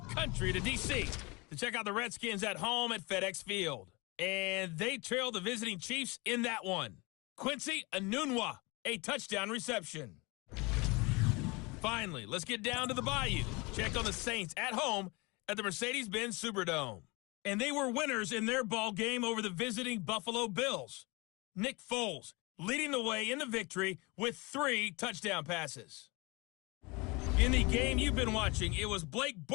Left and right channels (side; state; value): right; quieter; 26.4 dB